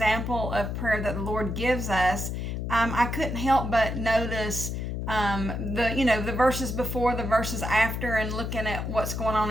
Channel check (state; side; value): noise; left; hum, 3 dB below the sound